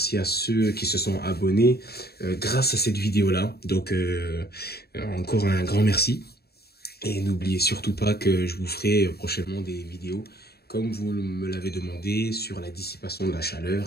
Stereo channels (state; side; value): late; right; 0.46 ms